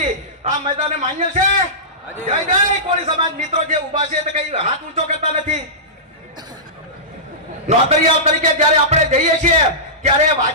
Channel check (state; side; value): normal; both; correlation -0.19